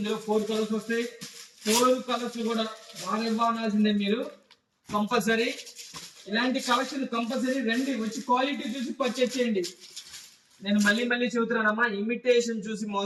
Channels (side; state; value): both; identical; correlation 1.00